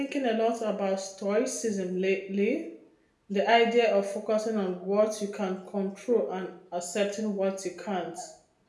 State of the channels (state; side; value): identical; both; correlation 1.00